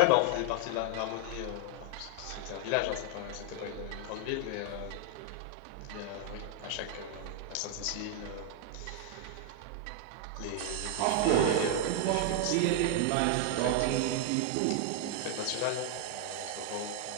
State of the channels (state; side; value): different; both; correlation 0.00